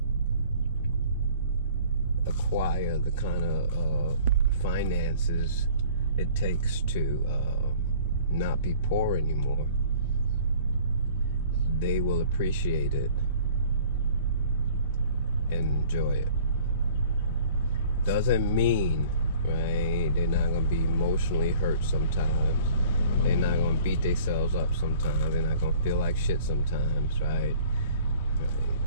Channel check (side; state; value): both; inverted; correlation -0.51